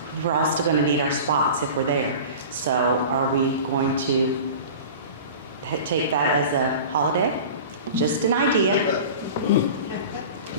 we're all still going to need our spots if we're there. So are we going to take that as a holiday? Just an idea.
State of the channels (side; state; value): both; inverted; correlation -0.36